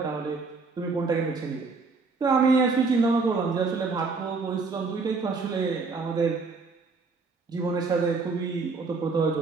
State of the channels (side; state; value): left; quieter; 4.3 dB